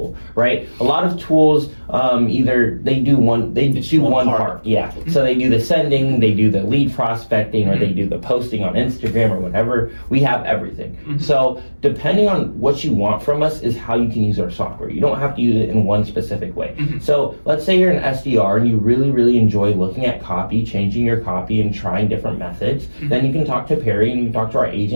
right? A lot of tools either they do one part. So they do the sending, they do the lead prospecting, or they do the posting on Instagram or whatever. We have everything. So depending on what you want from us is how you can use our software. You don't have to use it in one specific way. So let's say you're an SDR and you really, really enjoy looking at copy, changing your copy and trying different methods, then you can talk to Parry and you can talk to our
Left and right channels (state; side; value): inverted; both; correlation -1.00